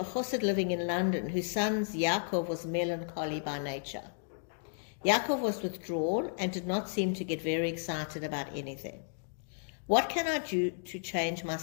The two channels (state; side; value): silent; right; digital silence